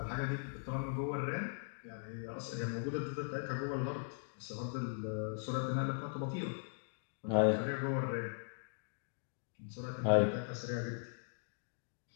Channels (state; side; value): silent; right; digital silence